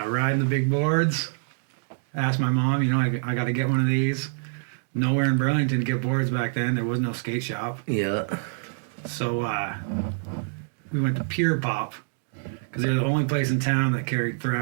the big boards. Asked my mom, I got to get one of these. Nowhere in Burlington to get boards back then. There was no skate shop. Yeah. So we went to Pure Pop because they're the only place in town that carried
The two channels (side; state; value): left; silent; digital silence